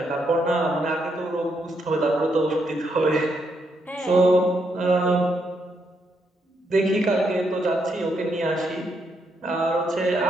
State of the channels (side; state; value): both; normal; correlation 0.77